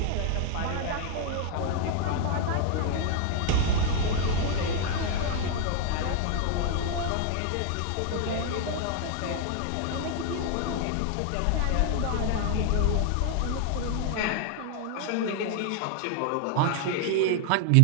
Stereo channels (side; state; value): both; different; correlation 0.00